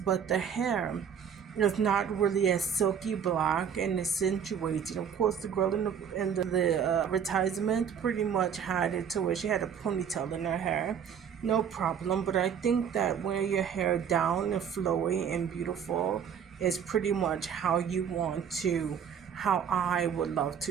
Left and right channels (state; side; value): quieter; left; 7.7 dB